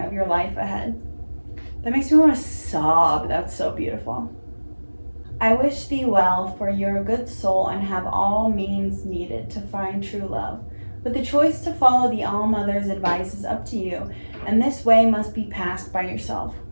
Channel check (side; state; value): both; inverted; correlation -1.00